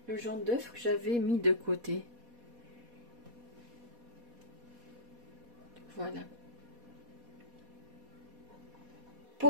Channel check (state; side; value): late; left; 4.1 ms